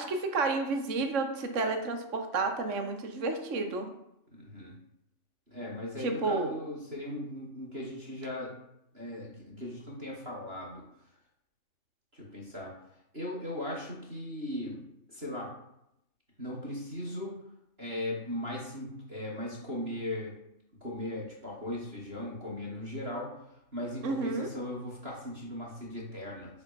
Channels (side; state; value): left; late; 3.0 ms